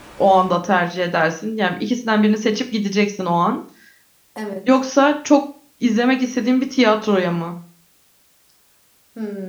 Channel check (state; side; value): identical; both; correlation 1.00